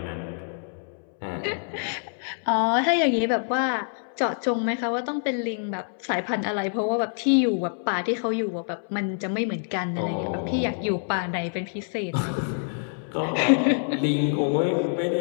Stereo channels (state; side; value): silent; right; 61 dB below the other